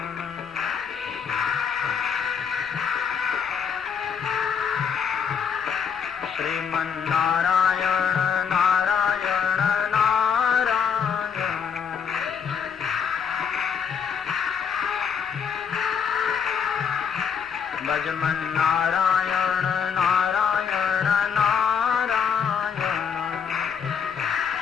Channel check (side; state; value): right; quieter; 6.8 dB